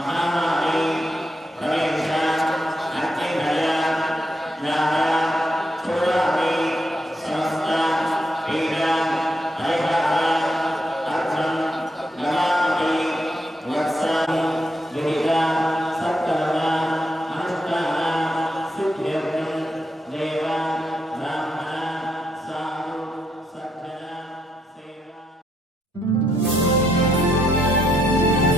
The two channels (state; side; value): normal; both; correlation 0.78